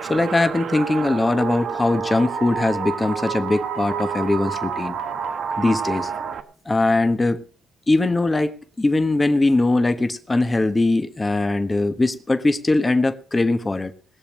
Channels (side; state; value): both; normal; correlation 0.94